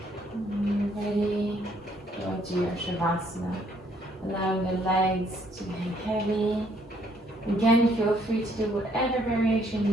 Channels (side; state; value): both; normal; correlation 0.67